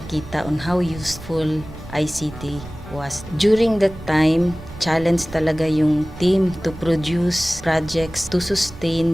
on how useful ICT was. During that time, challenge talaga yung team to produce projects to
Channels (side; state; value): right; noise; rumble, 16 dB below the sound